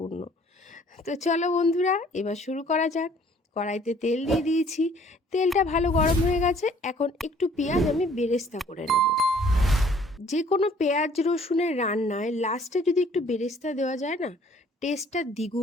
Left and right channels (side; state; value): both; normal; correlation 0.57